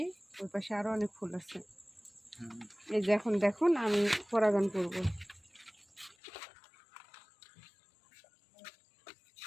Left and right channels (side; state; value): right; drops out; at 6.2 s